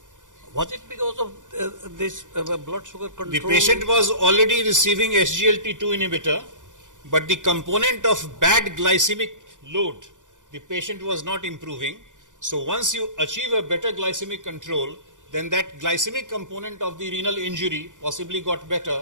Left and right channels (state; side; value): late; left; 0.87 ms